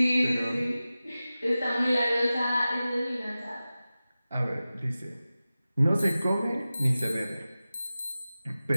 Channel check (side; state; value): both; inverted; correlation -0.95